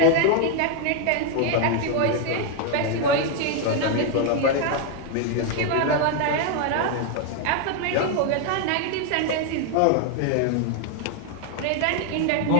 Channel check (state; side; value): different; both; correlation 0.01